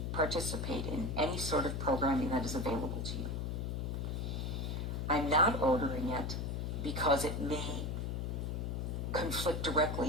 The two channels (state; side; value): noise; left; hum, 2 dB below the sound